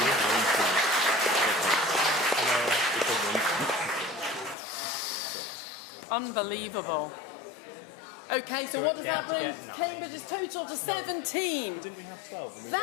Unbelievable. Okay, so what does that bring Cambridge's total to 17? Didn't we have 12?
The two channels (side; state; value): right; drops out; at 4.5 s